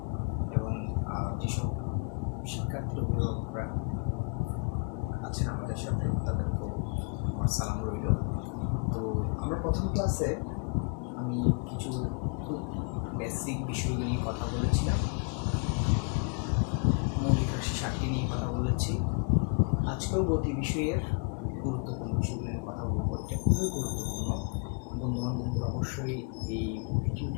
এবং যেসব শিক্ষার্থীর অভিভাবকরা আছেন আমাদের সাথে তাদেরকেও আমার সালাম রইল। তো আমরা প্রথম ক্লাসে আমি কিছু খুব বেসিক বিষয়গুলো নিয়ে কথা বলেছিলাম, মৌলিক রাশি 7টি নিয়ে কথা বলেছি। আজকেও গতি বিষয়ের গুরুত্বপূর্ণ বিষয়গুলো নিয়ে কথা বলবো। এটা খুবই গুরুত্বপূর্ণ। বন্ধুবান্ধবদের অবশ্যই এই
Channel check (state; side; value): quieter; right; 36.6 dB